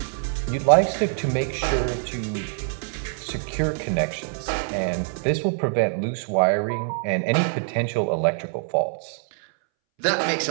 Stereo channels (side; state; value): left; silent; 62 dB below the other